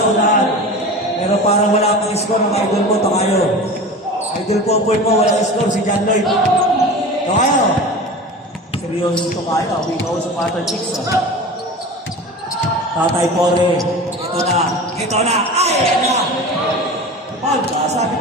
unahan. Pero parang wala kang score ng idol mo, Tokayo. Idol Popoy mo, wala kang score, si John Lloyd. Tokayo. Seryoso Tokayo, ikaw sa Pattern Chicks. Tatay Pore. Ito na. Ito na. Ay, yan na. Paul ka, sabi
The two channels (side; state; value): both; normal; correlation 0.33